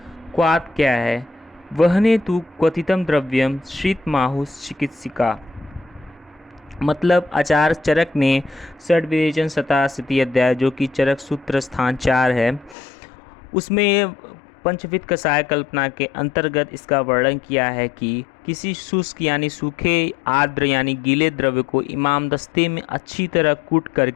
क्वाथ क्या है? वहने तु क्वथितम द्रव्यम श्रितमाहुः चिकित्सिका। मतलब आचार्य चरक ने षड्विवेचन शताशीति अध्याय, जो कि चरक सूत्र स्थान 4 है, उसमें पंचविध कषाय कल्पना के अंतर्गत इसका वर्णन किया है कि किसी शुष्क यानी सूखे, आर्द्र यानी गीले द्रव्य को इमामदस्ते में अच्छी तरह कूट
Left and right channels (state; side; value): drops out; right; at 12.8 s